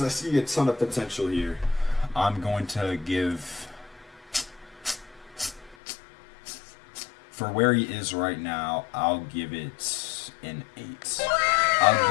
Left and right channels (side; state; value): right; drops out; at 5.8 s